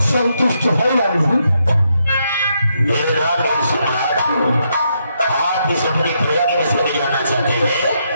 संतुष्ट है या नहीं? आप इस अपनी प्रजा के विषय में जानना चाहते हैं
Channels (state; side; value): inverted; both; correlation -0.78